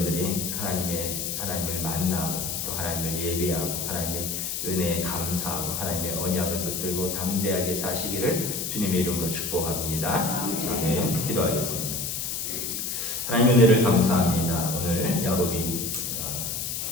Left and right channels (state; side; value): noise; left; hiss, 3 dB below the sound